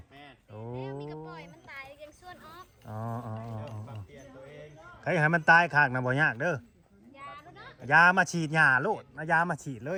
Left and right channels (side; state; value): both; identical; correlation 1.00